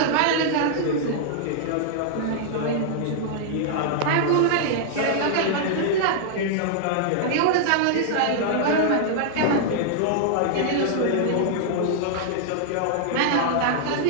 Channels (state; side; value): different; both; correlation -0.01